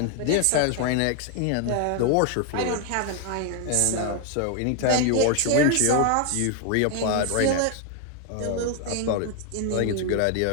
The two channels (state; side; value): different; both; correlation 0.00